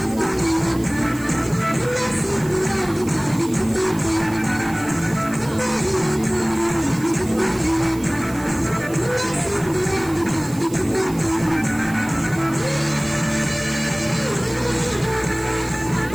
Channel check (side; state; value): right; noise; hiss, 18 dB below the sound